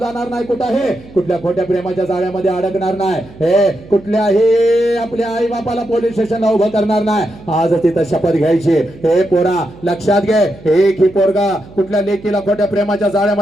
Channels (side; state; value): right; noise; hum, 20 dB below the sound